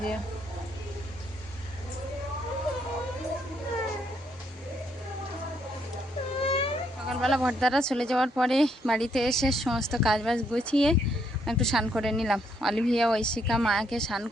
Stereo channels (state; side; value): normal; both; correlation 0.73